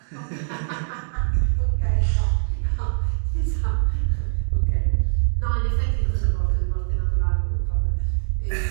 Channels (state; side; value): silent; left; digital silence